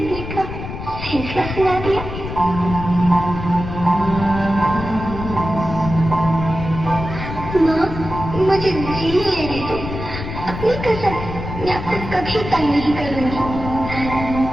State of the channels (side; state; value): left; noise; rumble, 8 dB below the sound